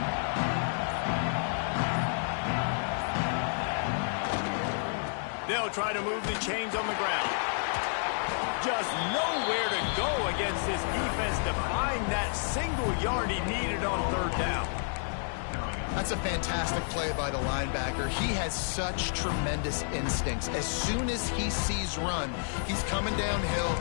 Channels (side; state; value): right; silent; digital silence